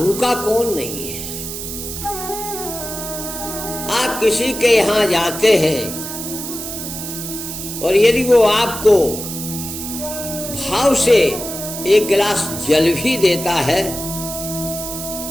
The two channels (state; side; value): noise; right; hiss, 7 dB below the sound